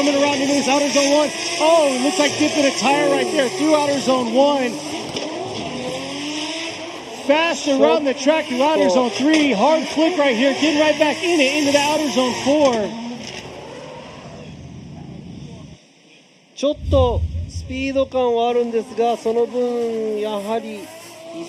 around into this outer zone 1. Oh, it looks like dipping a tire right there through outer zone 1. Fast around the track through outer zone 3. Hard flick right here, getting right back in it into the outer zone 4. ちょっとスピード感はあるんですが、その分やはり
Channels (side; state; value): both; identical; correlation 1.00